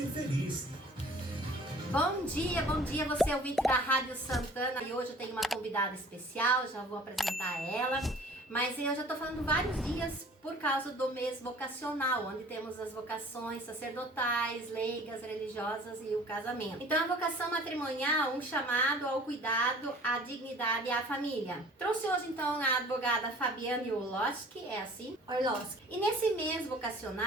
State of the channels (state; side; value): normal; both; correlation 0.49